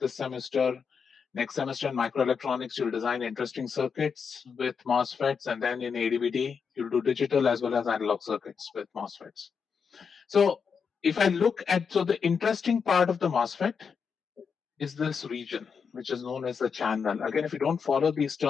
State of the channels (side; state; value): right; quieter; 6.1 dB